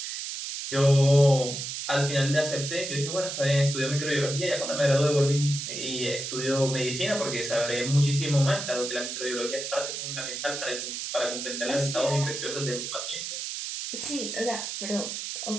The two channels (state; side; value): noise; right; hiss, 5 dB below the sound